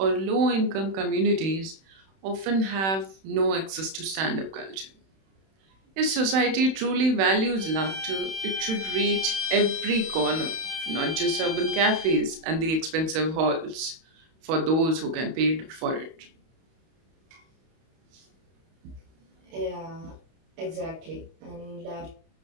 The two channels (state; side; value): late; left; 31 ms